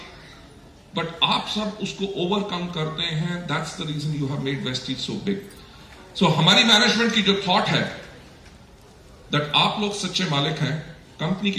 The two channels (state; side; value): identical; both; correlation 1.00